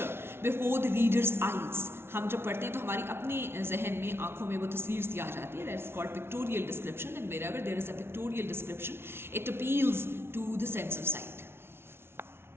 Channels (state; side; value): late; left; 0.12 ms